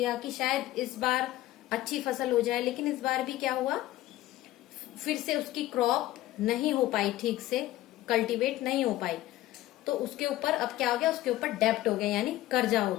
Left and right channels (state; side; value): quieter; right; 15.6 dB